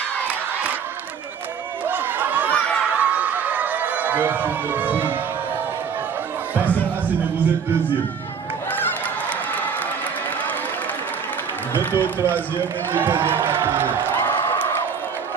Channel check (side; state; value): left; quieter; 6.7 dB